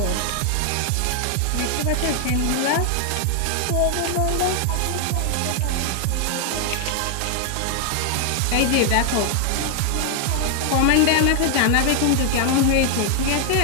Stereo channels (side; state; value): both; different; correlation 0.00